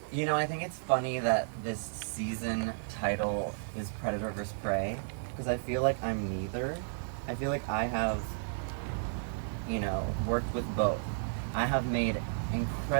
You know, I think it's funny that this season title is Predator vs. Prey, because I feel like I'm neither. I feel like I have, you know, worked with both. I have made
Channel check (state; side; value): silent; left; digital silence